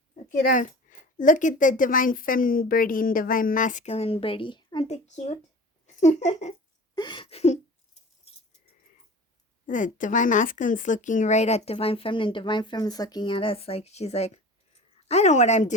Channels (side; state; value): both; normal; correlation 0.39